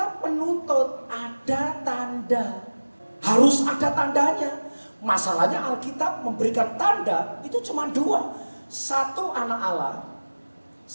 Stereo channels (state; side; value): inverted; both; correlation -1.00